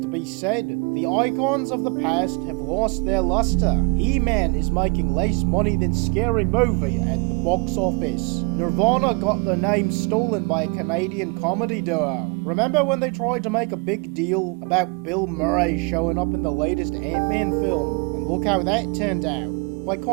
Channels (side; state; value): left; quieter; 31.9 dB